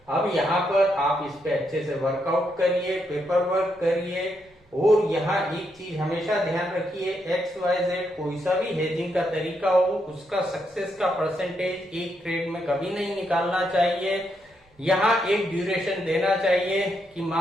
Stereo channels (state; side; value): normal; both; correlation 0.79